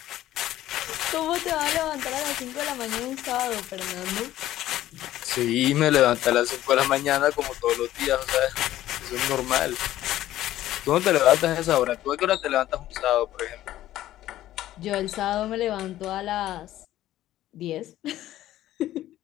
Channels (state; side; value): quieter; right; 13.9 dB